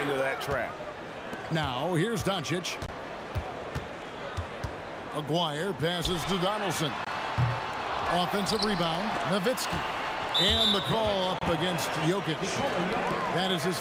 that trap. Now, here's Doncic. Aguirre passes to Donaldson. Offensive rebound, Nowitzki. And the call up against Jokic. That is his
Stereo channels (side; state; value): both; identical; correlation 1.00